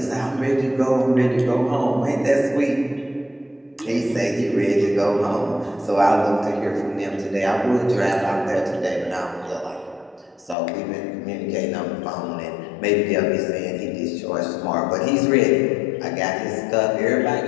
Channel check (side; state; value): right; drops out; at 10.6 s